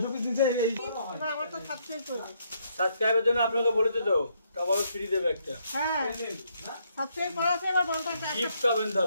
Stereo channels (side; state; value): both; inverted; correlation -0.73